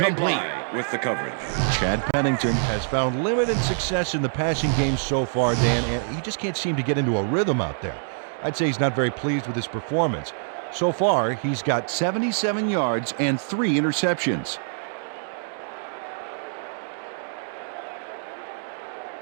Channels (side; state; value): left; silent; digital silence